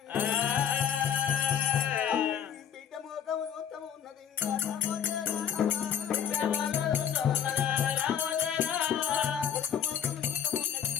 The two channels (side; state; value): right; quieter; 8.7 dB